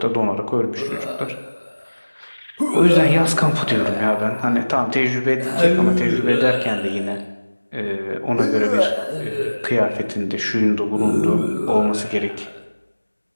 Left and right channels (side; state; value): both; inverted; correlation -1.00